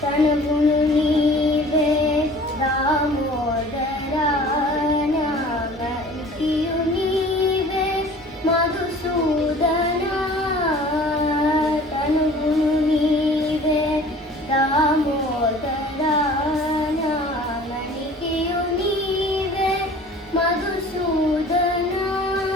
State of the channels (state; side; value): normal; both; correlation 0.47